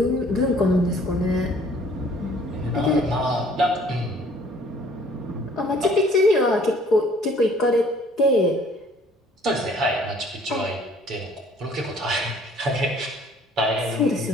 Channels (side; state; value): both; normal; correlation 0.56